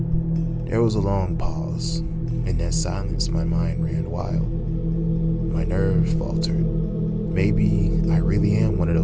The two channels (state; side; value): identical; both; correlation 1.00